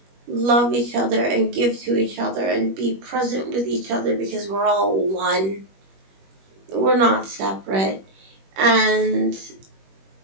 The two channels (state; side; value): late; left; 21 ms